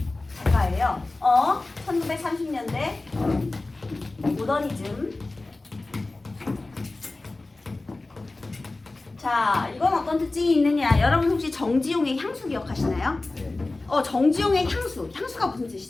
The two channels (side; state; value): right; quieter; 3.1 dB